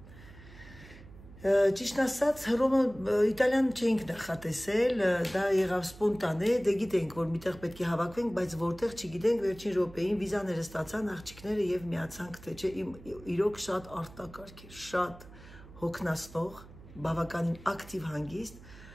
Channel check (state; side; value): noise; right; hum, 19 dB below the sound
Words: Ճիշտ ասած, Հռոմը Իտալիան չէինք նախատեսել, դա եղավ սպոնտանե, դե գիտենք, որ միտեղ պետք է հավաքվենք, բայց որտեղ չգիտենք, վերջին րոպեին վիզաները ստացան աղջիկները եւ միացանք, թե չէ, իրոք շատ արտակարգ էր, շատ հոգնածնող, բավականին ակտիվ հանգիստ,